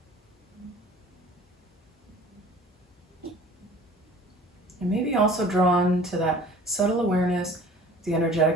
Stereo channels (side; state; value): both; normal; correlation 0.47